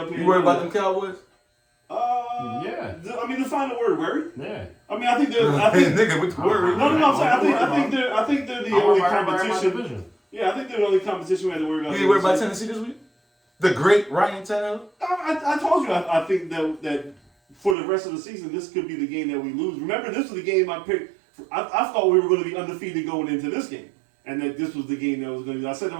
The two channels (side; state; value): left; drops out; at 17.8 s